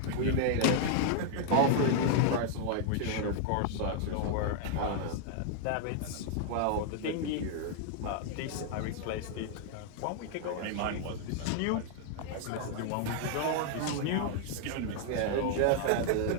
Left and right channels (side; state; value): both; different; correlation 0.00